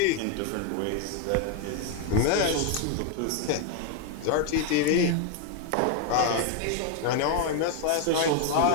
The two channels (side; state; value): both; different; correlation 0.01